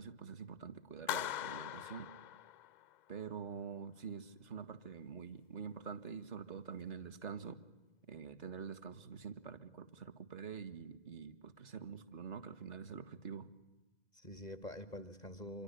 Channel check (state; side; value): late; right; 2.0 ms